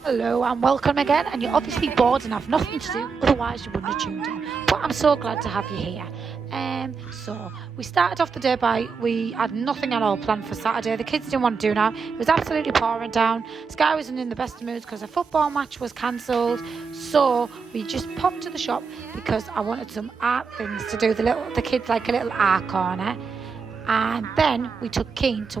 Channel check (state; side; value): quieter; left; 5.3 dB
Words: Hello and welcome again, and you're obviously bored and have nothing to do, otherwise you wouldn't have tuned in. But I'm so glad to have you here. So we started off the day we had nothing at all planned for Saturday. The kids didn't want to do now. It was absolutely pouring down. Sky wasn't in the best of moods because a football match was cancelled. So we just popped to the shop because I wanted some art things to do. The kids like a little art corner. And then we took Keen to